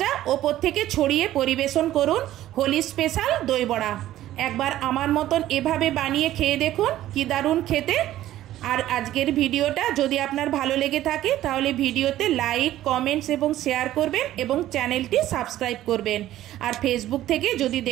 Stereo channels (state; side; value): quieter; left; 13.7 dB